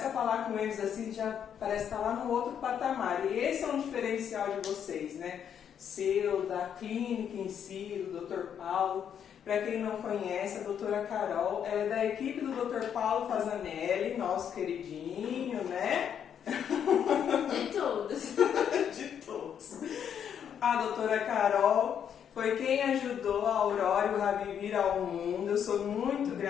a falar com eles assim, já parece estar lá no outro patamar. E esse é um diferencial de vocês, né? Seu, da clínica em si, do Dr. Paulo. Para quem não conhece, a doutora Carol, ela é da equipe do Dr. Paulo Fazanelli, nosso queridinho, né? De todos. De todos. A doutora Carol foi quem ajudou a Aurora e o Rabi vir ao mundo. Eu sou muito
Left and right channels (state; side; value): quieter; right; 8.5 dB